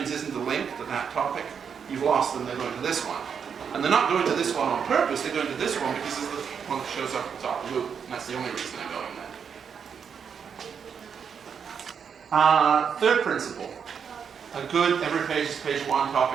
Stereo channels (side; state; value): left; quieter; 7.0 dB